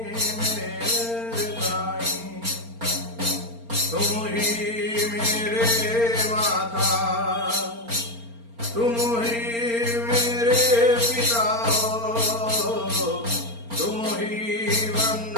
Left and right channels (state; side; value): late; left; 4.3 ms